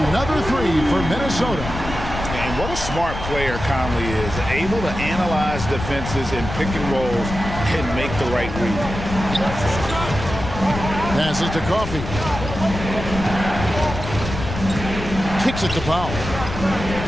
3 for Minnesota. And what a smart player Conley is, able to analyze defenses in pick and rolls and make the right read. Passes to Coffey. Kicks it to Powell.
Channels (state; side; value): noise; left; rumble, 7 dB below the sound